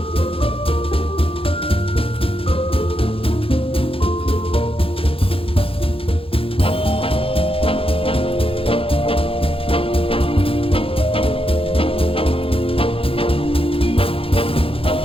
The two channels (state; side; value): late; right; 0.27 ms